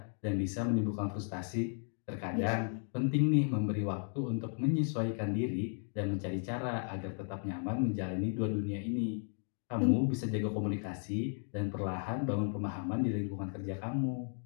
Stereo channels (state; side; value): silent; right; 54 dB below the other